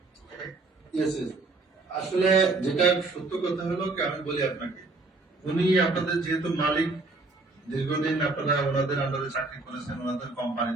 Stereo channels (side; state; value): left; quieter; 3.4 dB